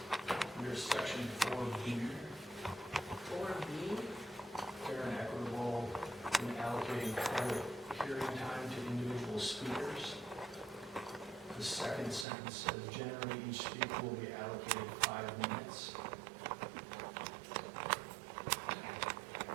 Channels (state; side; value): drops out; left; at 12.2 s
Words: The second sentence says, generally each speaker will be allocated 5 minutes.